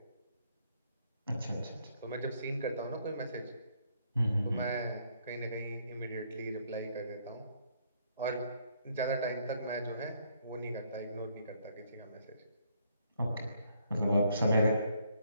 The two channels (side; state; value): both; inverted; correlation -0.69